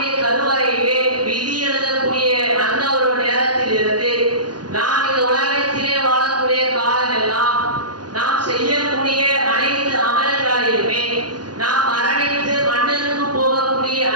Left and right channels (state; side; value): late; left; 0.70 ms